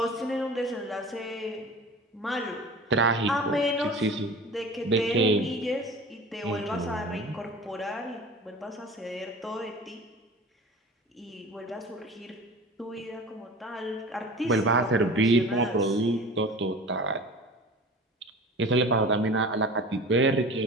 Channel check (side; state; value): both; normal; correlation 0.38